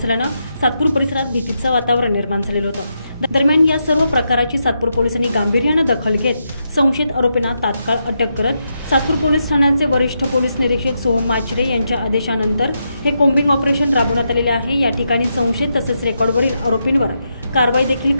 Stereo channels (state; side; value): inverted; both; correlation -0.84